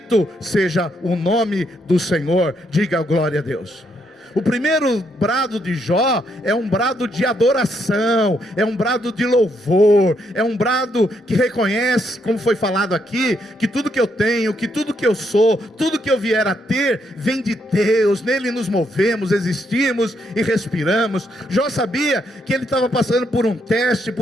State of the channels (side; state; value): both; normal; correlation 0.76